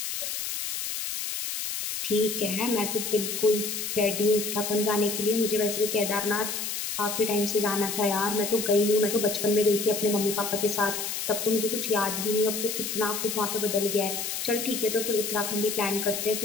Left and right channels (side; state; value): left; noise; hiss, 3 dB below the sound